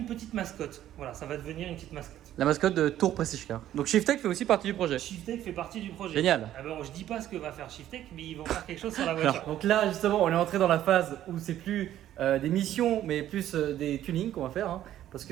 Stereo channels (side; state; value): left; quieter; 12.3 dB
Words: petite mascotte. Voilà, ça va devenir une petite mascotte. La mascotte de Tour Prestige Car. Donc Shiftek fait aussi partie du projet. Shiftek fait partie du projet. Génial. Ah ben, je dis pas ce que va faire Shiftek, mais ils vont faire quelque chose sur la voiture. Alors, donc là, justement, on est entré dans la phase où c'est plus des missions, mais plus des tunings qu'on va faire. Hein. Parce